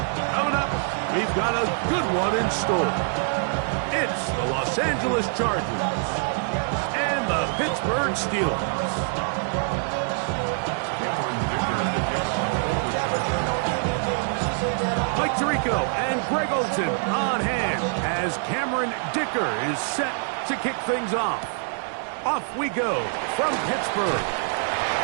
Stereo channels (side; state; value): left; silent; 62 dB below the other